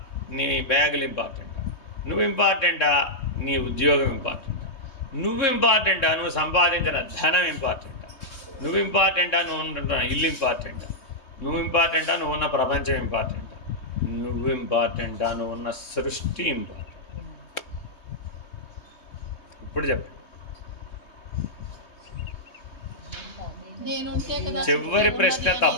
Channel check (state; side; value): late; right; 3.2 ms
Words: నీ బ్యాగులు ఇంపార్టెంటా, నువ్వు ఇంపార్టెంటా, నీ ఉద్యోగం ఇంపార్టెంటా, నువ్వు ఇంపార్టెంటా, నువ్వు సంపాదించిన ధనం ఇంపార్టెంటా, నువ్వు ఇంపార్టెంటా, నువ్వు ఉంటున్న ఇల్లు ఇంపార్టెంటా, నువ్వు ఇంపార్టెంటా, నువ్వు ఉన్న ప్రపంచం ఇంపార్టెంటా, నువ్వు ఇంపార్టెంటా, నువ్వు ఉన్న సృష్టి ఇంపార్టెంట్. ఇప్పుడు చెప్పండి. చివరి ప్రశ్న